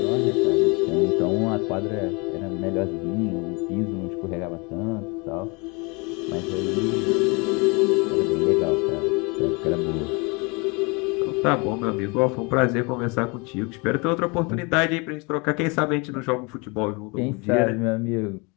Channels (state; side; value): quieter; right; 29.4 dB